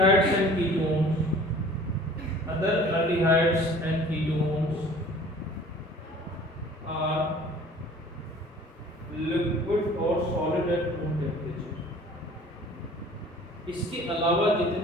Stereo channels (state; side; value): normal; both; correlation 0.48